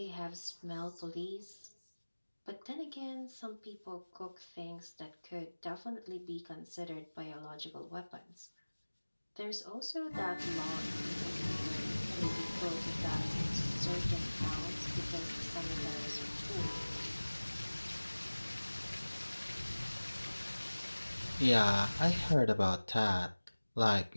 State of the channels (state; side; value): inverted; both; correlation -1.00